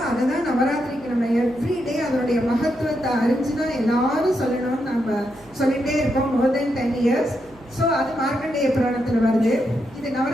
அதுதான் நவராத்திரிக்கு நம்ம எவ்ரிடே அதனுடைய மகத்துவத்தை அறிஞ்சுதான் எல்லாரும் சொல்லணும்னு நம்ம சொல்லிட்டே இருக்கோம் மோர் தென் 10 years. ஸோ அது மார்க்கண்டேய புராணத்துல வருது. இது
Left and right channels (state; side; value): noise; right; hum, 26 dB below the sound